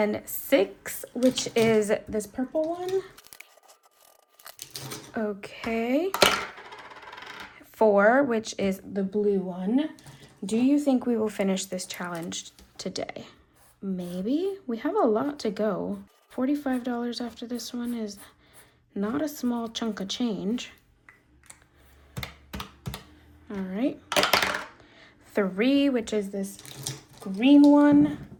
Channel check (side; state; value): both; identical; correlation 1.00